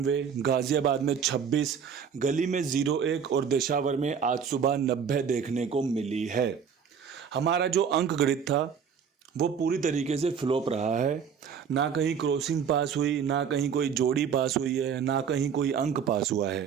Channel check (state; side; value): quieter; left; 7.2 dB